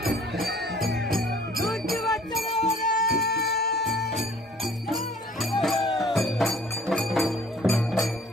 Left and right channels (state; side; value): normal; both; correlation 0.54